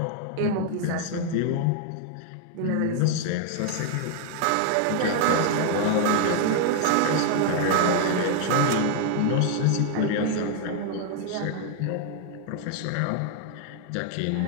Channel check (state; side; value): different; both; correlation 0.00